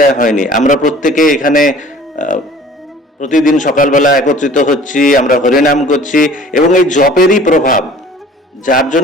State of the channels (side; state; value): both; normal; correlation 0.48